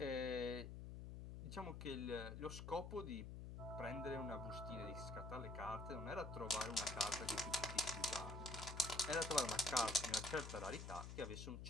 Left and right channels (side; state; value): left; noise; hum, 7 dB below the sound